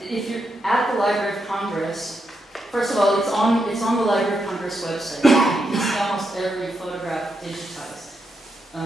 if you're at the Library of Congress, first of all, it's on the Library of Congress website. You can see almost every photograph digitized.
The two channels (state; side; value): normal; both; correlation 0.83